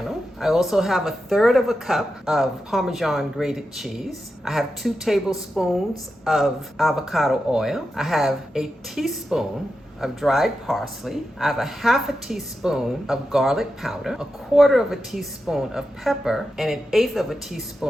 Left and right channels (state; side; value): normal; both; correlation 0.89